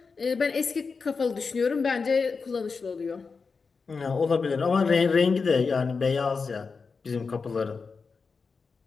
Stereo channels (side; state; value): right; quieter; 4.9 dB